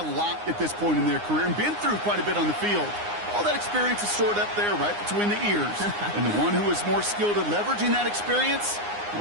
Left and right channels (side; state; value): left; late; 9.7 ms